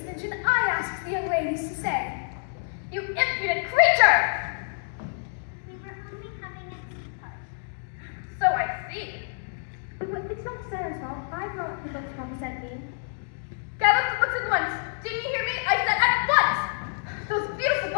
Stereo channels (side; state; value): right; silent; digital silence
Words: Minchin, I asked the young ladies to stay. You impudent creature! We were only having a tea party. So I see. It's not Sarah's fault. I brought the books Mama sent me. Gather the books at once. Didn't you hear me? I said at once! Those beautiful